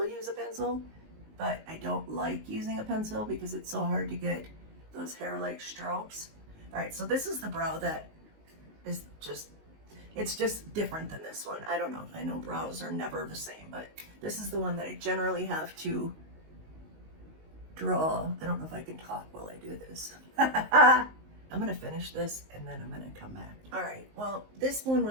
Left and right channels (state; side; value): late; left; 19 ms